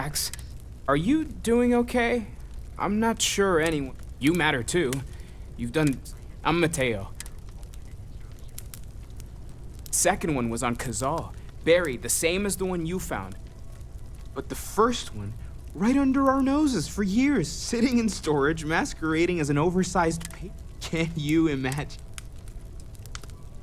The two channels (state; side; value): identical; both; correlation 1.00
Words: Are you doing okay? I'm not sure anyone... You matter too. You've done... I'm Mateo. Second one was on Kazal, buried, the same as the one you found. But the first one, right under our noses for years, sitting in storage, masquerading as an oversized pig. Can you imagine?